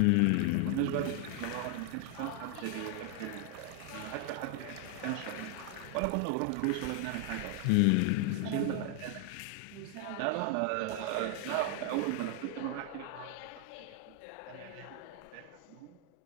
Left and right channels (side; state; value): both; different; correlation 0.00